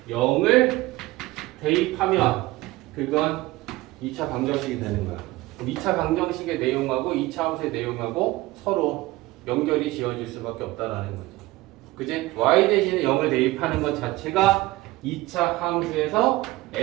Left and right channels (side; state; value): left; quieter; 19.1 dB